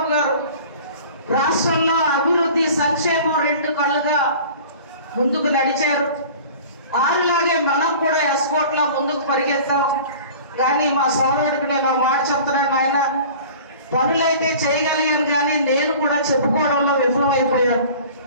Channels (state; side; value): inverted; both; correlation -0.43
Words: గారు రాష్ట్రంలో అభివృద్ధి, సంక్షేమం 2 కళ్ళుగా ముందుకు నడిచారు. ఆరులాగే మనం కూడా ఎస్కోట్లో ముందుకు పరిగెత్తాం. కానీ మా సోదరుడికి నేను మాట చెప్తున్నాను, ఆయన పనులైతే చేయగలిగాను కానీ నేను కూడా చెప్పుకోవడంలో విఫలమైపోయాను.